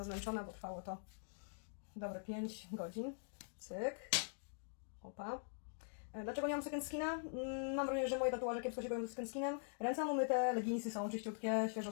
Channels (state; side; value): silent; right; digital silence